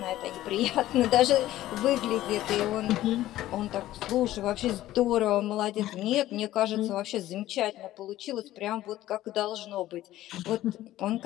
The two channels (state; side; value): quieter; right; 14.7 dB